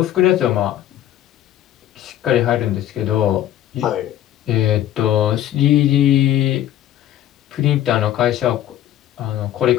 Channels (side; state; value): right; quieter; 12.2 dB